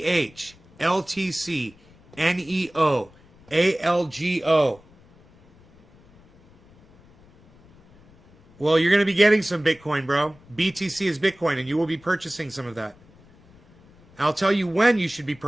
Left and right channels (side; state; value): left; noise; rumble, 27 dB below the sound